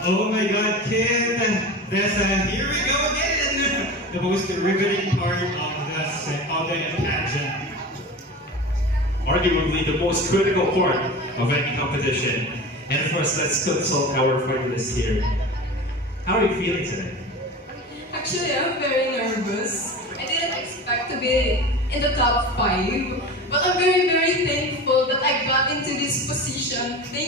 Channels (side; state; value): both; normal; correlation 0.32